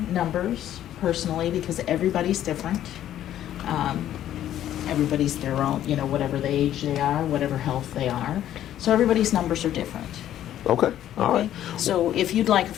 numbers personally because everybody's different. Everybody's their own, you know, whatever the age they are, whatever health they are. So everybody's numbers are different. Okay, all right. So if you'd like a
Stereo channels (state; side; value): quieter; right; 11.8 dB